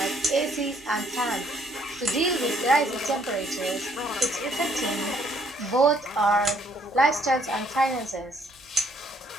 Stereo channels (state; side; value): normal; both; correlation 0.66